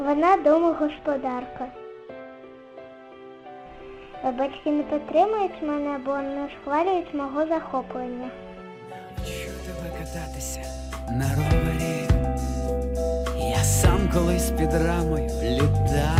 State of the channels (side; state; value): both; identical; correlation 1.00